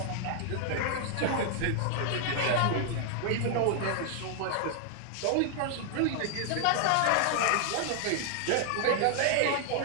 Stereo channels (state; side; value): different; both; correlation 0.00